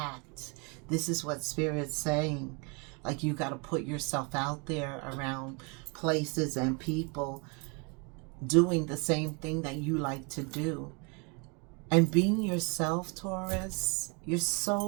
This is what Spirit's saying. Like, you got to put yourself out there around places and people doing the same thing that you like to do. And being yourself, Taurus, you're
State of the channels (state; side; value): quieter; left; 32.7 dB